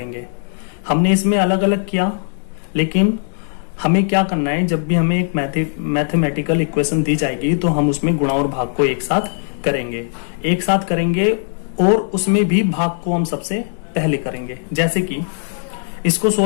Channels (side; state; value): right; silent; digital silence